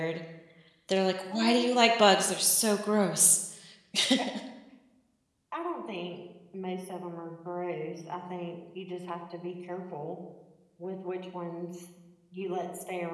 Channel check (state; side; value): identical; both; correlation 1.00